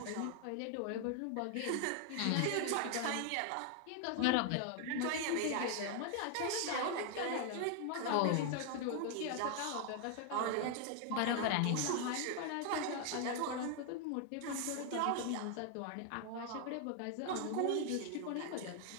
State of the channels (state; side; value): different; both; correlation 0.00